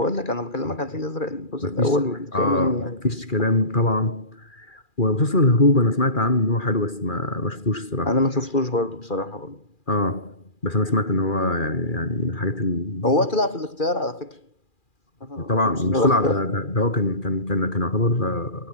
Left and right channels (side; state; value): right; late; 2.4 ms